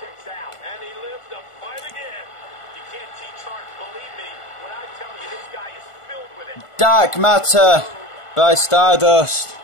Dark Matter by Stardust.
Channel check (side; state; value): right; late; 1.5 ms